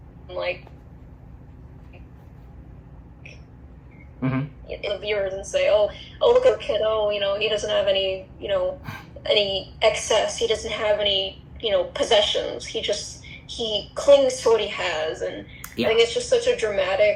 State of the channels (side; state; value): both; identical; correlation 1.00